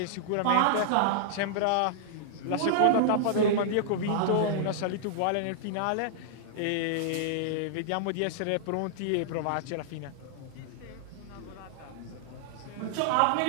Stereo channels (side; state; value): both; different; correlation -0.01